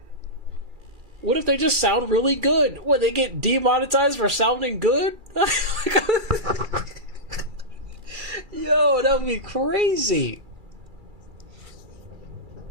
what if they just sound really good? What, they get demonetized for sounding good? Yo, that would be crazy.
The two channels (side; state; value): left; late; 2.3 ms